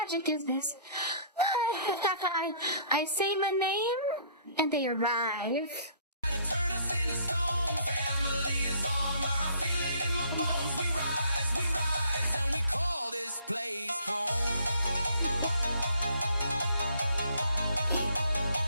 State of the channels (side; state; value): both; inverted; correlation -0.58